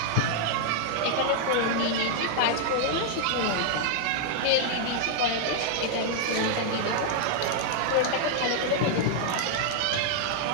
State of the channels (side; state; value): both; different; correlation -0.01